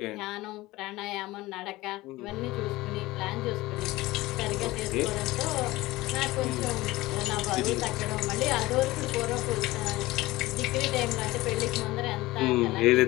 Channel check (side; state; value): right; quieter; 19.0 dB